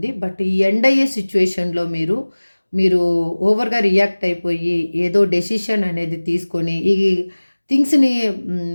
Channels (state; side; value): inverted; both; correlation -1.00